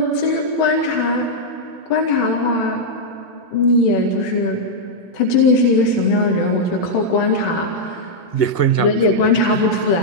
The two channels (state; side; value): late; right; 2.0 ms